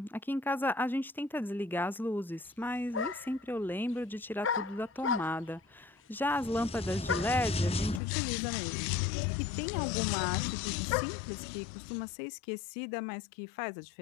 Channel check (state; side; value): drops out; right; at 8.0 s